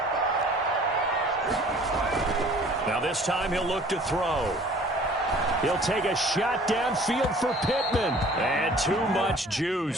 Now this time he'll look to throw. He'll take a shot downfield for Pittman. And too much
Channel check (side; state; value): both; normal; correlation 0.51